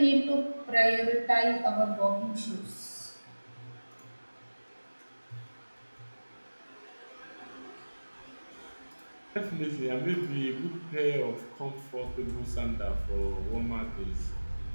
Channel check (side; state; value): both; inverted; correlation -1.00